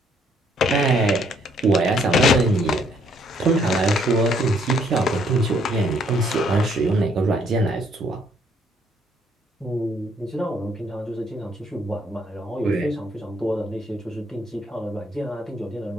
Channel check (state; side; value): normal; both; correlation 0.67